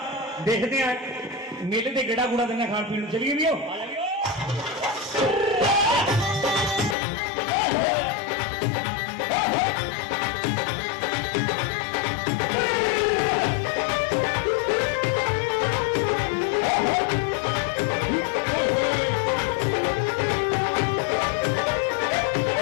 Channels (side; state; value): right; drops out; at 7.0 s